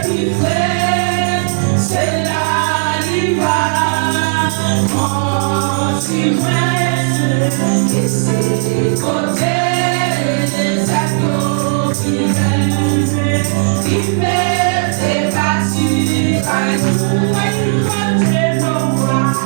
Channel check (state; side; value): silent; left; digital silence